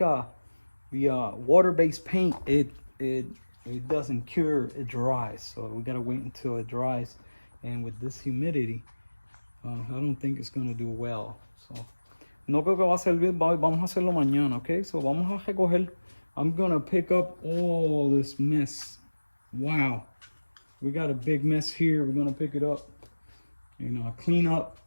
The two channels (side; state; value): both; inverted; correlation -1.00